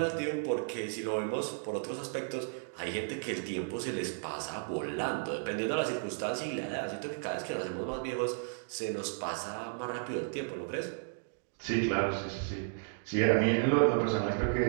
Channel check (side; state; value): left; silent; digital silence